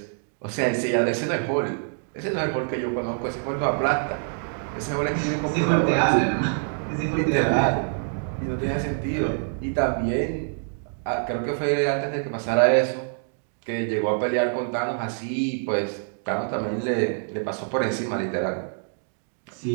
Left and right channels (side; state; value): left; silent; 60 dB below the other